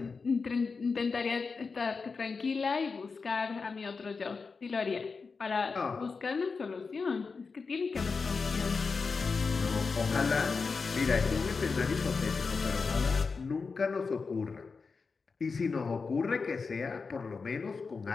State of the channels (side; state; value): right; quieter; 4.7 dB